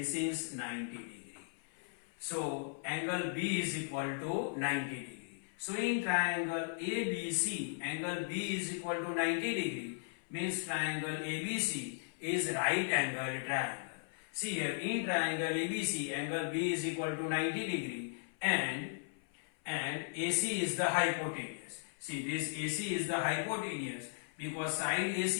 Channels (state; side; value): silent; right; 53 dB below the other